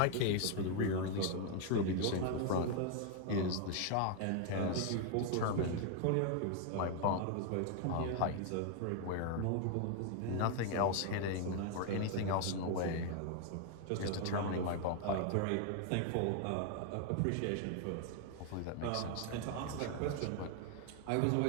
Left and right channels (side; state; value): both; different; correlation 0.00